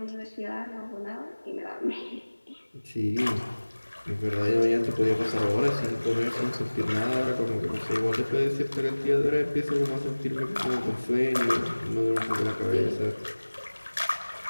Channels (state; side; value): inverted; both; correlation -1.00